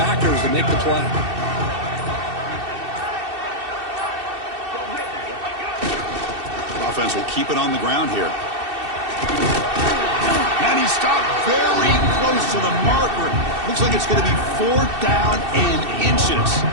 to make the play. Offense will keep it on the ground here. And he stopped very close to the marker. Looks like it's going to be 4th down and inches.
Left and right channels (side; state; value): left; late; 2.7 ms